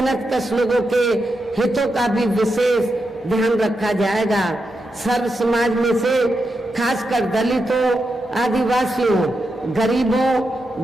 लोगों के हितों का भी विशेष ध्यान रखा जाएगा। सर्व समाज में से खासकर दलितों, आदिवासियों, गरीबों,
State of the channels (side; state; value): both; normal; correlation 0.86